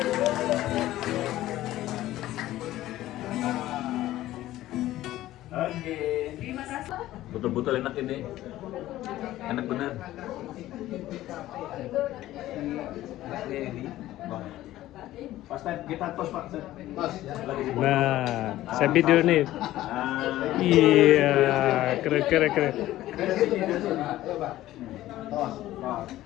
Oke. Terima kasih. Betul-betul enak ini. Enak bener. Pas kita tos Pak. Tos, ya. Nah, saya video nih. Ah. Iya, keren. Ayo, Pak. Tos.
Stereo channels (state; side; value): quieter; right; 14.9 dB